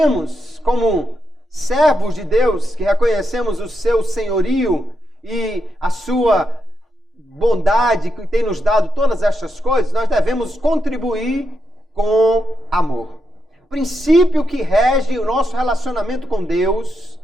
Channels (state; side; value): normal; both; correlation 0.84